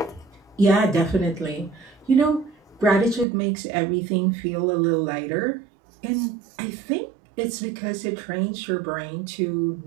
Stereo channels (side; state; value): left; drops out; at 3.2 s